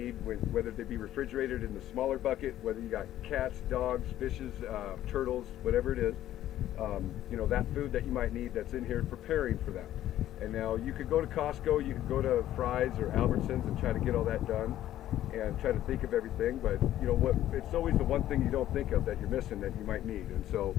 whether they be refrigerated in the smaller bucket, whether you got cats, dogs, fishes, turtles, whatever it is, that food that you might need that's in here, preparing for that. And now you could go to Costco, you could go to Fry's or Albertsons and try to get all that done and try to think of everything, but it's always the one thing you don't think of that you're missing that you might need. And so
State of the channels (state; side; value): quieter; right; 12.9 dB